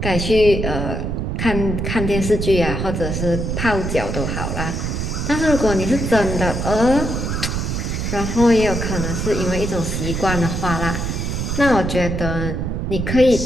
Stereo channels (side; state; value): right; noise; rumble, 2 dB below the sound